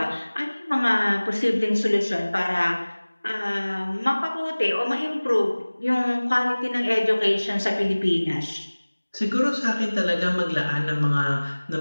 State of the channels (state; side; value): inverted; both; correlation -1.00